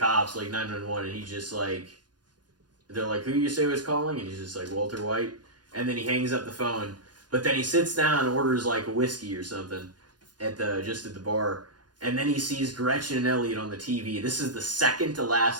like 911, and he's just like, they're like, who you say was calling? And he's just like, Walter White. And then he hangs up the phone. But then he sits down and orders like a whiskey or something at the bar. And then he sees Gretchen and Elliot on the TV. This is the second to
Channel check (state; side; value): late; left; 0.70 ms